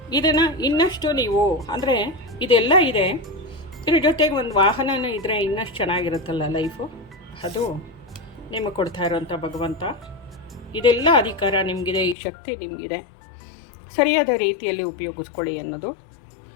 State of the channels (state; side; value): drops out; right; at 12.2 s